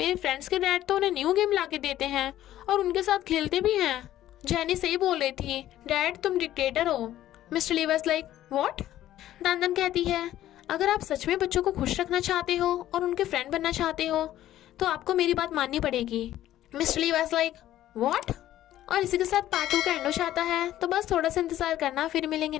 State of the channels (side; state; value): right; quieter; 13.2 dB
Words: फ्रेंड्स के डैड तो उन्हें न्यू गेम लाके देते हैं और उनके साथ खेलते भी हैं। जेनी सही बोल रही थी, डैड तुम डिक्टेटर हो। Mister Lee was like what. दानदन कहती है अगर आप सच में बच्चों को खुश रखना चाहते हो और उनके फ्रेंड बनना चाहते हो तो आपको मेरी बात माननी पड़ेगी। Mister Lee was like what. और इसी के साथ पार्ट 2 का एंड हो जाता है। तो बस थोड़ा सा इंतजार करना, फिर मिलेंगे